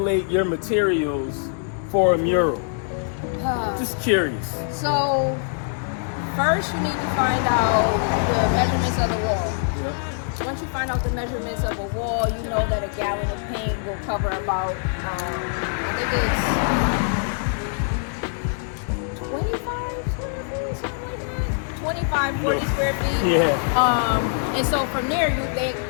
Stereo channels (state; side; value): silent; right; digital silence